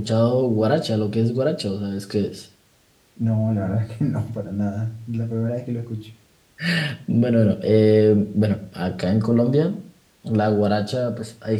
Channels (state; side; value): identical; both; correlation 1.00